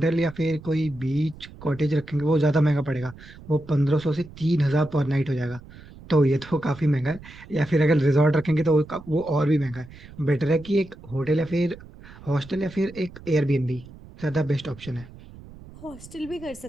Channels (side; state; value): right; noise; rumble, 18 dB below the sound